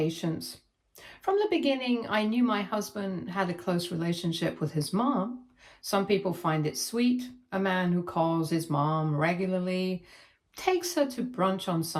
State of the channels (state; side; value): identical; both; correlation 1.00